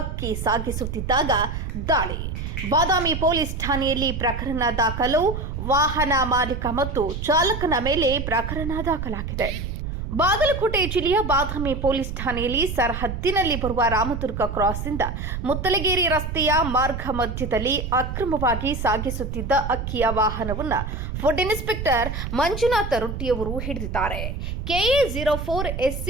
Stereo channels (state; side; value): noise; right; rumble, 5 dB below the sound